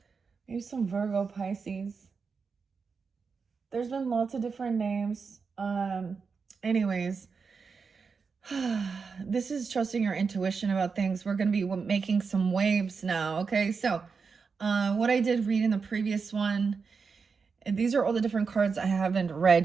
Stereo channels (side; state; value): left; quieter; 5.2 dB